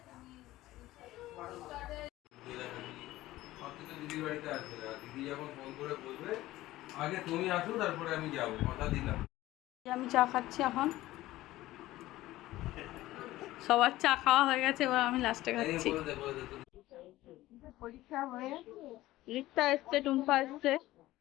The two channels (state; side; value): quieter; right; 16.5 dB